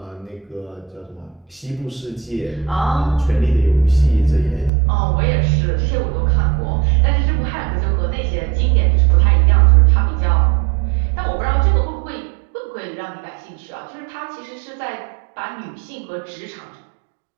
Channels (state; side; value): drops out; left; at 4.7 s